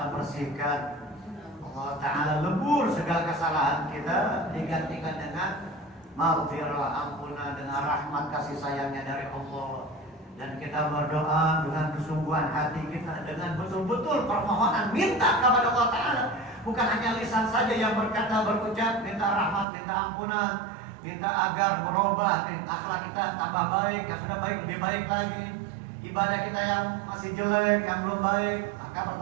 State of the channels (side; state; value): left; drops out; at 19.7 s